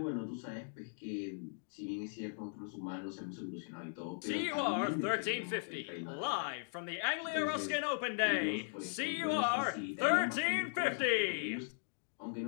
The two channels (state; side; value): silent; right; digital silence